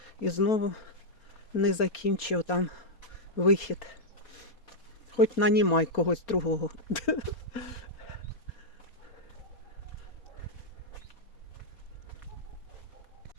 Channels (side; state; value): right; late; 4.3 ms